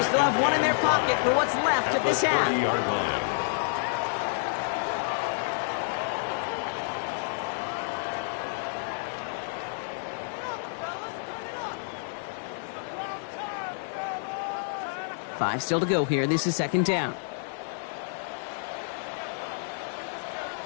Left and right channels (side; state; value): right; silent; digital silence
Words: still have one in their pocket for what's left of this half. Five still to go here. This is second down.